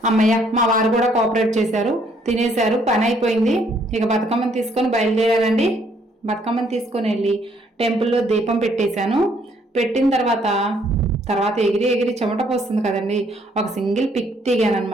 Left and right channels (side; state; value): both; normal; correlation 0.67